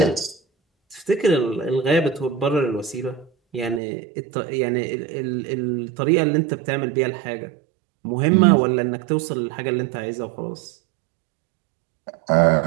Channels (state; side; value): drops out; left; at 3.8 s